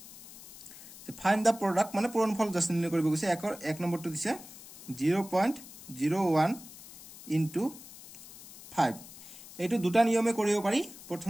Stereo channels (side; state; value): left; noise; hiss, 17 dB below the sound